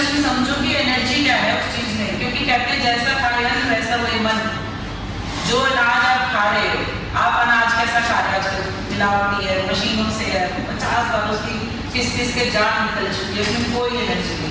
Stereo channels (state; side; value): identical; both; correlation 1.00